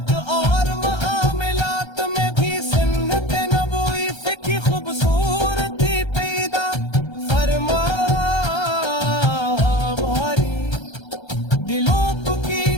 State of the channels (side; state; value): right; late; 1.3 ms